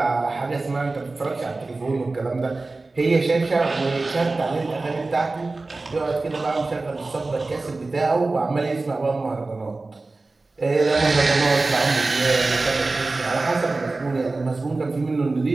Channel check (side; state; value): left; quieter; 3.4 dB